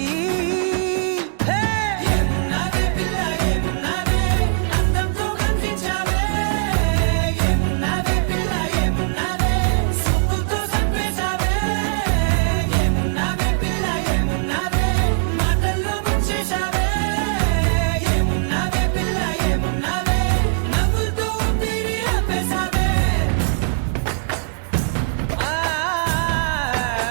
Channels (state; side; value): silent; left; digital silence